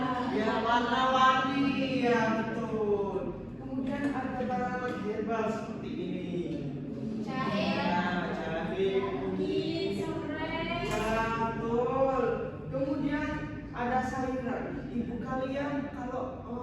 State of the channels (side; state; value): both; identical; correlation 1.00